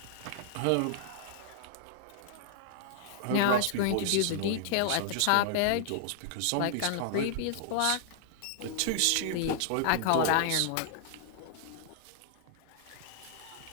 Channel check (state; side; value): different; both; correlation -0.01